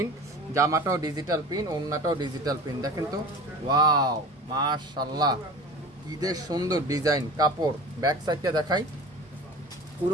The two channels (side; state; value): both; normal; correlation 0.36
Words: জামাটাও ডিজিটাল প্রিন্ট, ওড়নাটাও ডিজিটাল প্রিন্ট। দেখেন তো, ওয়াও মাশাআল্লাহ, কি যে সুন্দর ডিজাইন। কাপড় ব্যাক সাইডটা দেখাই,